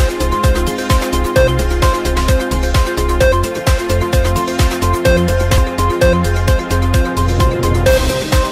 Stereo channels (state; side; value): identical; both; correlation 1.00